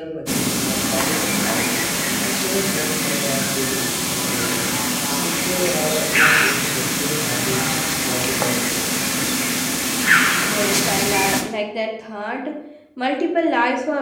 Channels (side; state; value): both; identical; correlation 1.00